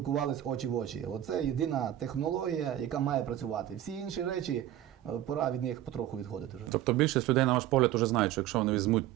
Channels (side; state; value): left; quieter; 12.6 dB